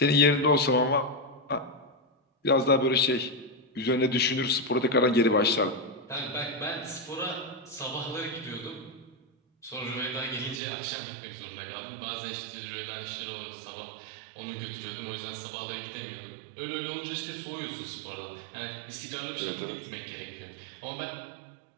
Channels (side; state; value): left; drops out; at 10.6 s